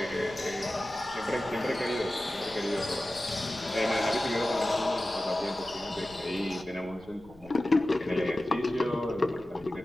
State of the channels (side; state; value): left; noise; rumble, 25 dB below the sound